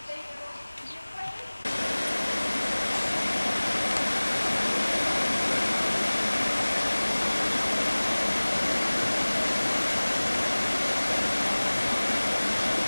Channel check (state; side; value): inverted; both; correlation -1.00